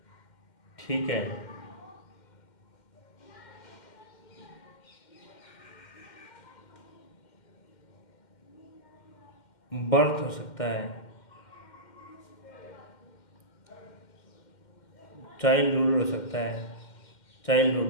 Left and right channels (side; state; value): right; late; 2.1 ms